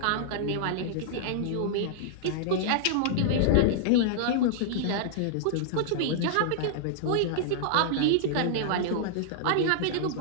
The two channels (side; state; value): both; different; correlation -0.01